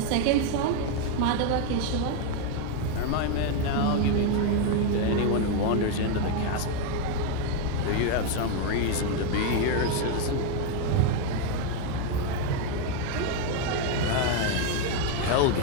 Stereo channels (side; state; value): both; different; correlation 0.01